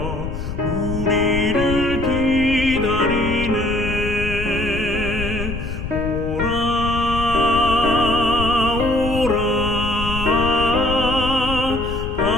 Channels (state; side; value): noise; left; rumble, 6 dB below the sound